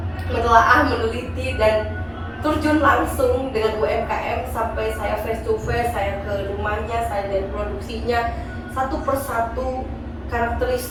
menelaah, meneliti dan terjun langsung dengan UMKM sampai saya face to face, saya ke rumahnya, saya lihat produksinya satu persatu,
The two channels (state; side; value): identical; both; correlation 1.00